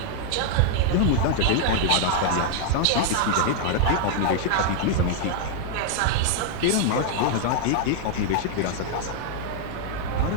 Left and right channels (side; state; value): both; different; correlation 0.00